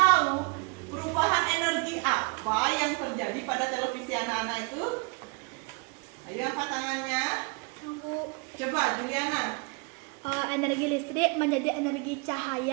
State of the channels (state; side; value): quieter; left; 33.0 dB